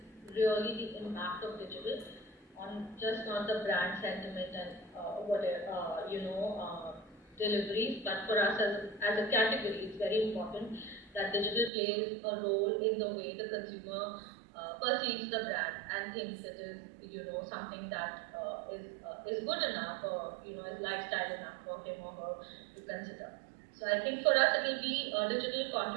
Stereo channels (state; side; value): drops out; left; at 11.7 s